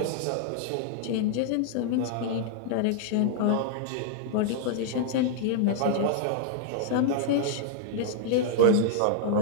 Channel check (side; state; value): both; different; correlation -0.01